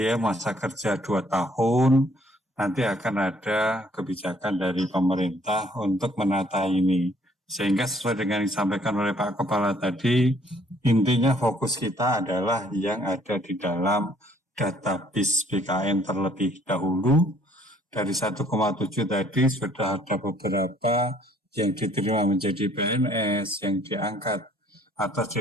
masa kerja 2 tahun, nanti akan ada kebijakan dari pemerintah untuk menata ini. Sehingga sesuai dengan yang disampaikan oleh Pak Kepala tadi, intinya fokus kita adalah yang ada di dalam database BKN terlebih dahulu. Dari 1,7 tadi sudah ada beberapa yang diterima menjadi PNS, yang diangkat atau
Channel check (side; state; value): both; normal; correlation 0.62